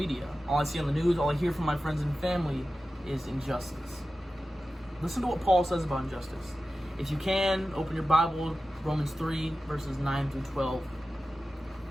all I see on the news, all I hear from my friends and family is injustice. Listen to what Paul says about injustice. If you can, open your Bible, Romans 3, verses 9 through 12.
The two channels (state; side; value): normal; both; correlation 0.94